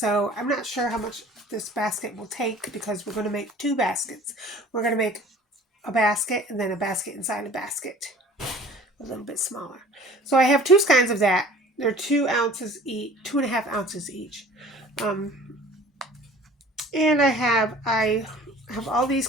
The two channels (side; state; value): both; normal; correlation 0.48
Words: I'm not sure how much this basket will take because we're going to make 2 baskets. We're going to make a basket and then a basket inside a basket, a little bit smaller. So I have 2 kinds of that. They're 2 ounces each, 2.5 ounces each. And I have all these